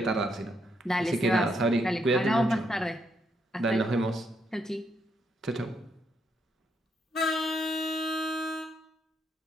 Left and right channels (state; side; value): normal; both; correlation 0.77